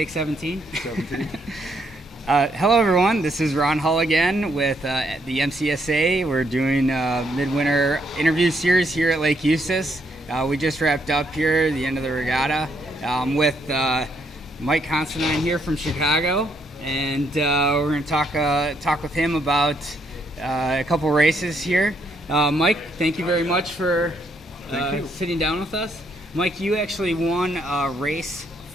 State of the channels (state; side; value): normal; both; correlation 0.73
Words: 17. 17. Hello, everyone. This is Ron Hull again with the Mcsa. We're doing a Midwinter interview series here at Lake Eustis. We just wrapped up here, the end of the regatta, with Mike Considine here from Chicago, and we're going to talk with him about a couple races here. Mike, thank you very much for sitting down with us. Mike, you actually won race